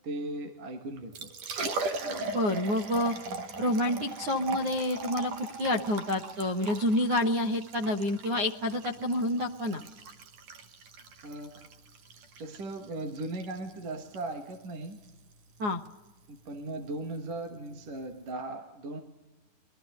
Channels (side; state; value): left; late; 10 ms